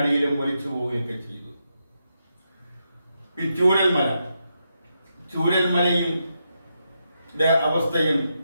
ഒലിച്ചു പോവുകയൊക്കെ ചെയ്തു. ഈ ചൂരൽമലയും അവസ്ഥയും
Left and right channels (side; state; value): both; inverted; correlation -0.84